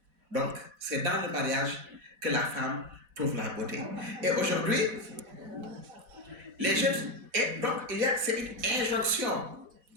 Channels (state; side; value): late; left; 4.1 ms